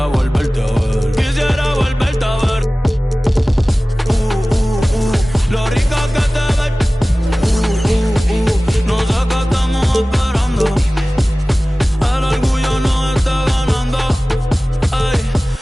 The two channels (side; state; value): both; normal; correlation 0.97